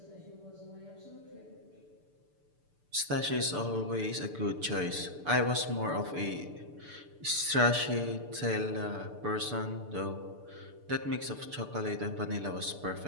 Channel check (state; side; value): late; left; 6.8 ms